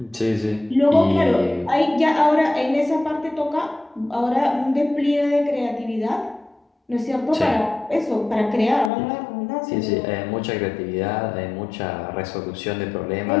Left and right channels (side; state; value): right; drops out; at 8.9 s